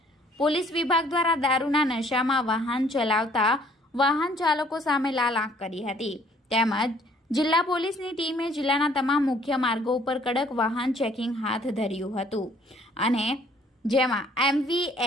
પોલીસ વિભાગ દ્વારા દારૂના નશામાં વાહન ચલાવતા વાહન ચાલકો સામે લાલ આંખ કરી હતી. તેમજ જિલ્લા પોલીસની ટીમે જિલ્લાના તમામ મુખ્ય માર્ગો ઉપર કડક વાહન ચેકિંગ હાથ ધર્યું હતું અને જેમાં એમવી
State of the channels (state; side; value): normal; both; correlation 0.60